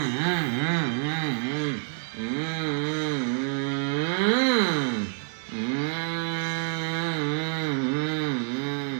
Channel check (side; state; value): left; silent; digital silence